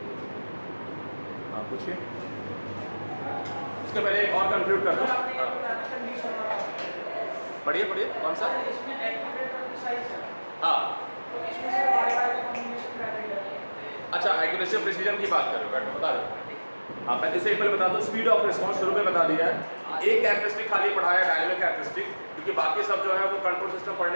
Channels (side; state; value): both; inverted; correlation -1.00